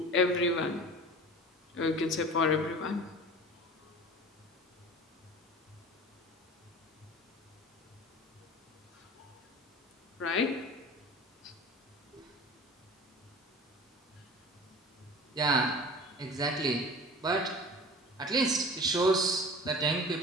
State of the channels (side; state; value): both; normal; correlation 0.39